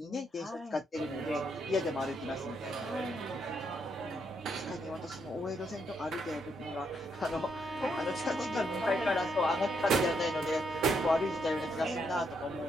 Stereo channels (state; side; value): normal; both; correlation 0.76